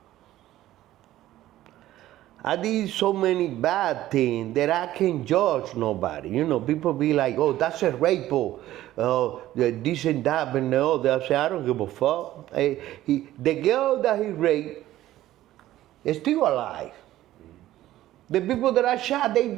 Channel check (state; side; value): quieter; left; 14.4 dB